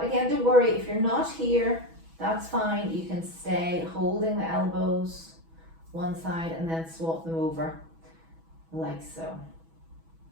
again, don't worry, if you're not here, that's fine. You can stay holding the elbows one side and then swap them over like so.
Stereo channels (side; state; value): left; late; 6.1 ms